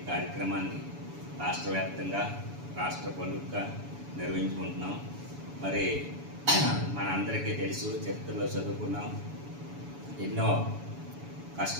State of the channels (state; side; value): late; left; 7.0 ms